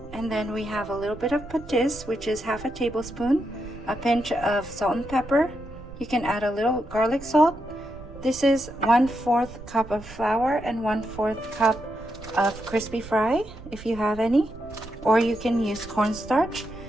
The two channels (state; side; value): noise; right; rumble, 16 dB below the sound